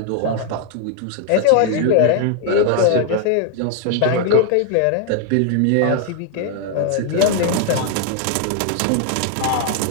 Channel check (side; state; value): both; different; correlation 0.00